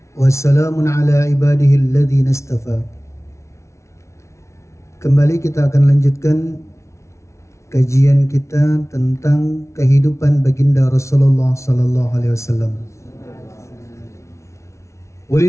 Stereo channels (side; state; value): right; late; 0.14 ms